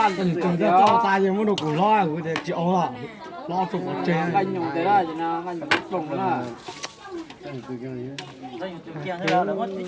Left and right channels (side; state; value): both; identical; correlation 1.00